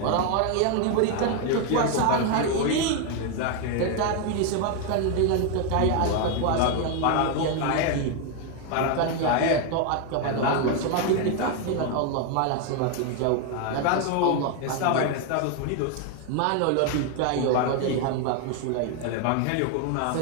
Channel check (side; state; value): both; different; correlation 0.01